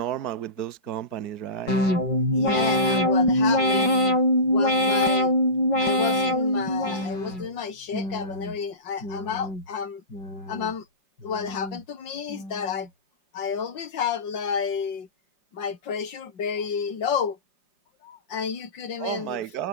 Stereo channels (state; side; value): late; right; 5.4 ms